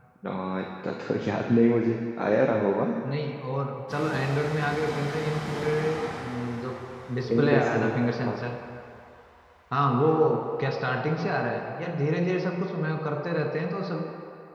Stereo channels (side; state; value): both; identical; correlation 1.00